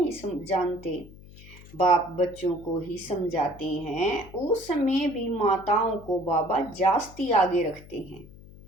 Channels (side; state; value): left; noise; hum, 19 dB below the sound